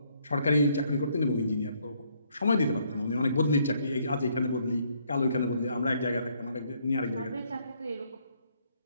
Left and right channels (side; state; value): both; inverted; correlation -0.69